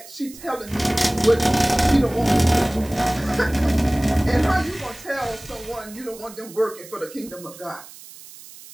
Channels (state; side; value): noise; right; hiss, 18 dB below the sound